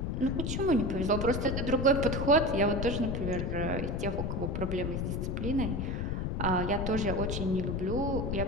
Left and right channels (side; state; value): left; noise; rumble, 1 dB below the sound